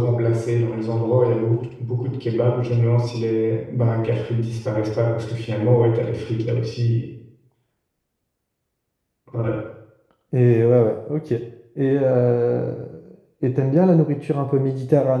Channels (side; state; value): both; identical; correlation 1.00